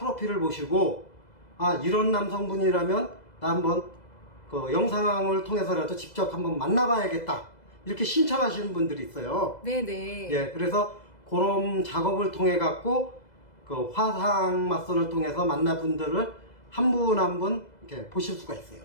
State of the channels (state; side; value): late; right; 2.0 ms